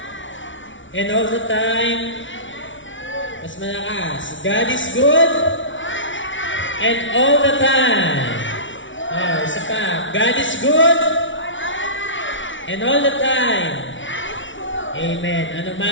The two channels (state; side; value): late; right; 0.56 ms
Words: And all the time. Mas malakas. God is good. And all the time. Oh, isa pa. God is good. And all the time. Amen. Ano